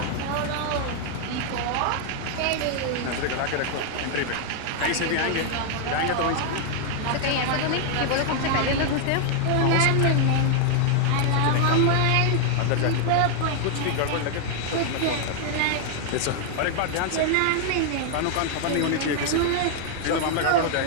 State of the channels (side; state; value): both; different; correlation 0.00